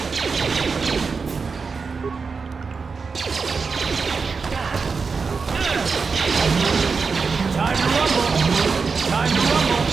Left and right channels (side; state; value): left; quieter; 4.9 dB